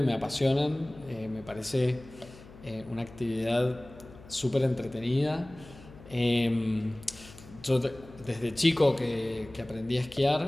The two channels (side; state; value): left; noise; hum, 19 dB below the sound